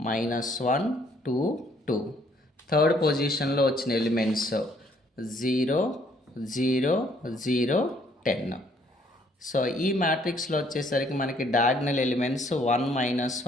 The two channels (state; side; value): normal; both; correlation 0.65